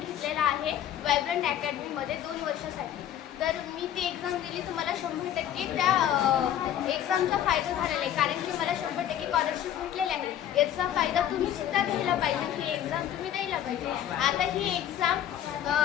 आहे वायब्रंट अकॅडमीमध्ये 2 वर्षासाठी. तर मी ती एक्झाम दिली तर मला 100% त्या एक्झामचा फायदा झालेला आहे, कारण की मला 100% स्कॉलरशिप भेटलेली आहे. याचा फायदा तुम्ही सुद्धा घ्यायला पाहिजे. ही एक्झाम तुम्ही द्यायला पाहिजे. आता ही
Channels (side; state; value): right; quieter; 10.8 dB